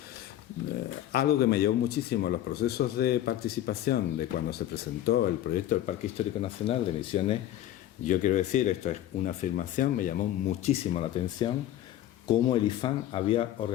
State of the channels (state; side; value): quieter; right; 12.7 dB